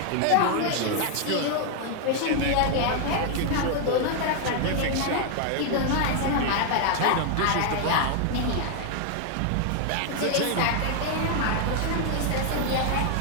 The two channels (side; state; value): both; different; correlation 0.00